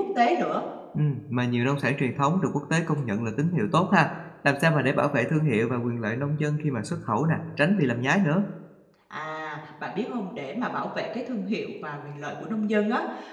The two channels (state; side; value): identical; both; correlation 1.00